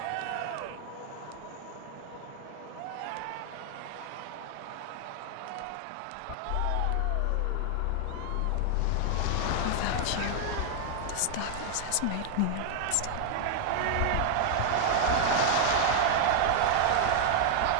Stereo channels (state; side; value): different; both; correlation 0.00